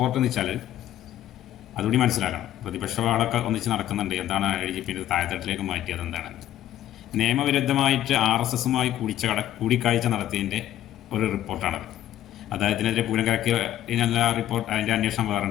എന്ന് വെച്ചാൽ അതുകൂടി മനസ്സിലാക്കണം. പ്രതിപക്ഷവാളൊക്കെ ഒന്നിച്ച് നടക്കുന്നുണ്ട്. എന്താണ് ADGP താഴെത്തട്ടിലേക്ക് മാറ്റിയത്? എന്താണ് നിയമവിരുദ്ധമായിട്ട് RSSുമായി കൂടിക്കാഴ്ച നടത്തിയതിൻ്റെ ഒരു റിപ്പോർട്ടാണത്. അദ്ദേഹത്തിനെതിരെ പൂരം കറക്കിയ റിപ്പോർട്ട്, അതിൻ്റെ അന്വേഷണം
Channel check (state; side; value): quieter; right; 12.5 dB